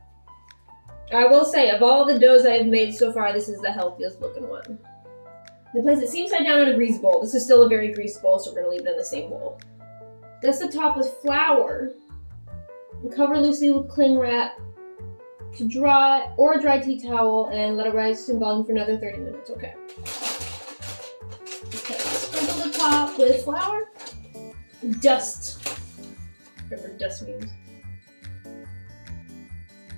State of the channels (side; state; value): both; inverted; correlation -1.00